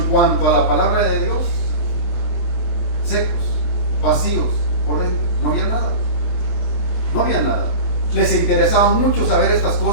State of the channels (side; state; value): right; late; 23 ms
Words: cuanto a la palabra de Dios, secos, vacíos por dentro, no había nada. No había nada. Les interesaba mucho saber estas